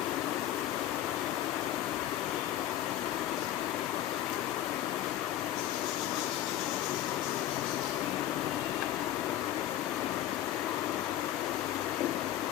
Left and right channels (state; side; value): quieter; right; 12.4 dB